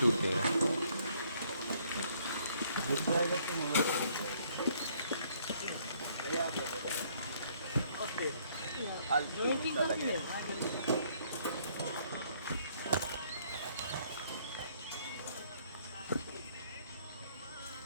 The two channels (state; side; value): inverted; both; correlation -0.65